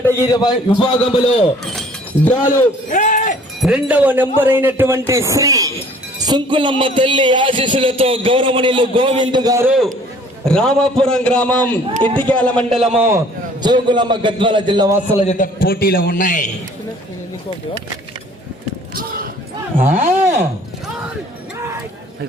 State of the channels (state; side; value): normal; both; correlation 0.54